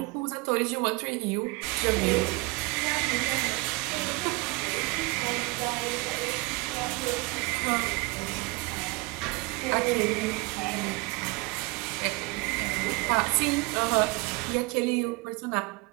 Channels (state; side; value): quieter; left; 26.0 dB